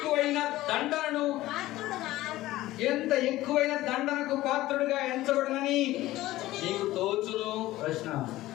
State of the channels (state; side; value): quieter; right; 16.5 dB